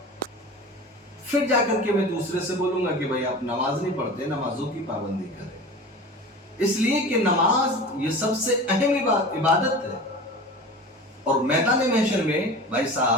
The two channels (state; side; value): normal; both; correlation 0.35